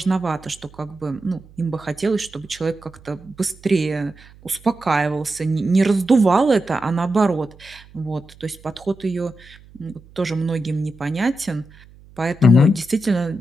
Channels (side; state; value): right; noise; hum, 24 dB below the sound